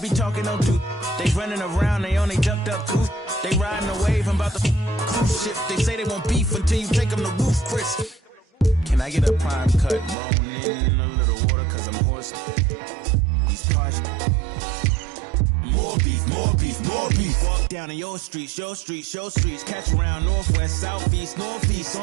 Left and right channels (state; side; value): drops out; left; at 10.2 s